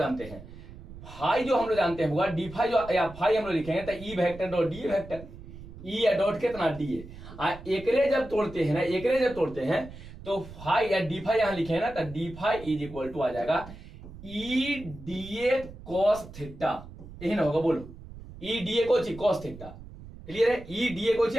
हैं, फाई जो हम लोग जानते हैं होगा डी फाई, जो या फाई हम लोग लिखेंगे तो E vector dot d vector, E या डॉट कितना डी है, एकरे जब तोड़ते हैं ना, एकरे जब तोड़ते हैं तो फाई या डी फाई यहां लिखे ना, तो d phi is equal to आ जाएगा E d A cos theta, यही ना होगा बोलो, ई डी ए को कॉस थीटा। क्लियर है, ई डी ए को आ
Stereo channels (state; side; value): noise; right; rumble, 15 dB below the sound